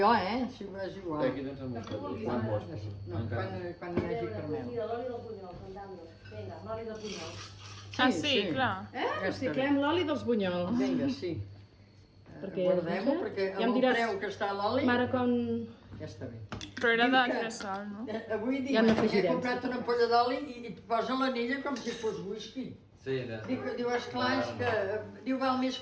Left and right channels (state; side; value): identical; both; correlation 1.00